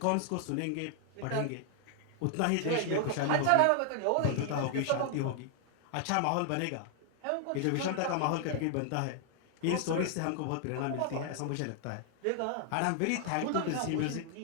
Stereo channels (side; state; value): both; different; correlation 0.00